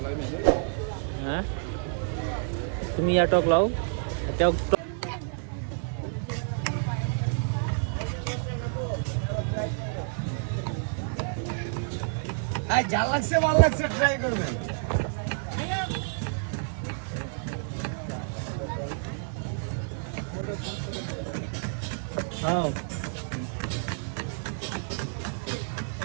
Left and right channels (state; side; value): silent; left; digital silence